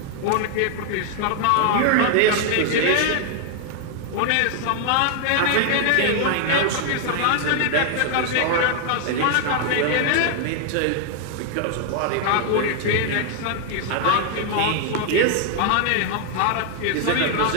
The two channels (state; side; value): different; both; correlation 0.00